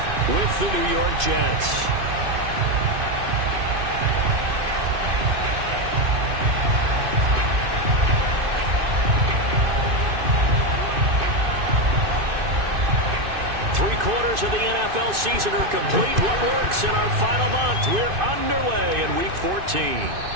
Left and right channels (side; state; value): left; late; 2.5 ms